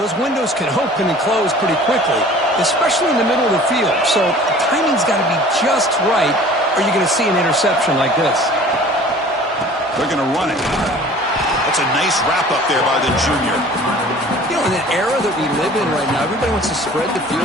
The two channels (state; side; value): normal; both; correlation 0.47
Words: windows can open and close pretty quickly, especially in the middle of the field. So the timing's got to be just right, or you're going to see an interception like this. They're going to run it. That's a nice wrap up there by the junior. You know, in the era that we live in right now, everybody wants to spread the field